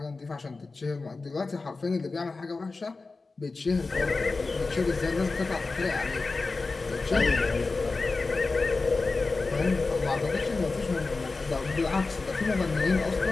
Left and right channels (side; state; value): right; quieter; 3.8 dB